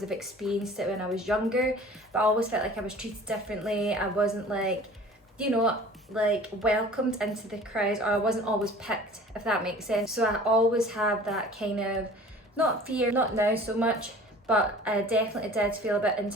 I've experienced it when I was younger, but I always felt like I was treated differently. I wasn't like, you know, like welcomed into the crowds, or I wasn't always picked, if that makes sense. So I always have that kind of, not fear, not now so much, but I definitely did feel a bit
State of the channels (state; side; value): normal; both; correlation 0.45